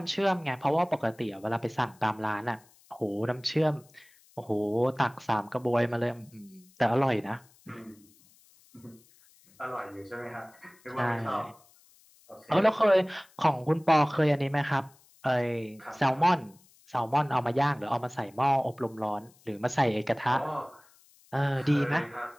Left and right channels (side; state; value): left; noise; hiss, 29 dB below the sound